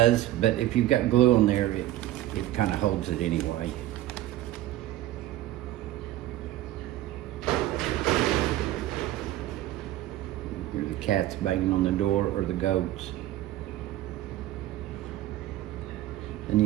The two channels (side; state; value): left; quieter; 14.5 dB